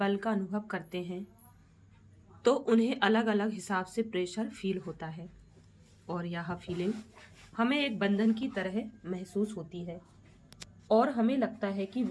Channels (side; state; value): both; identical; correlation 1.00